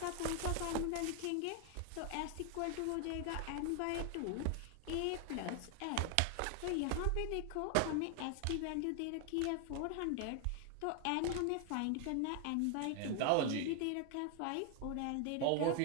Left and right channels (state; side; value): different; both; correlation 0.00